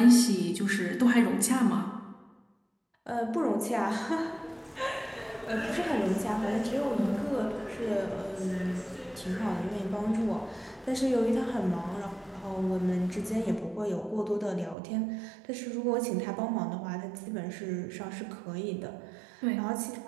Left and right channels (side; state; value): left; drops out; at 14.8 s